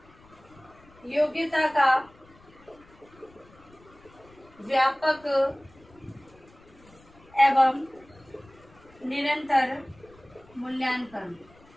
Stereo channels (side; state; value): left; noise; rumble, 26 dB below the sound